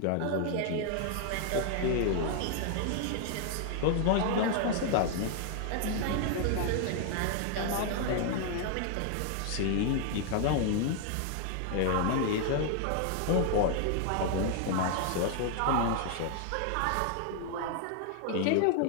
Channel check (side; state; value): both; different; correlation 0.00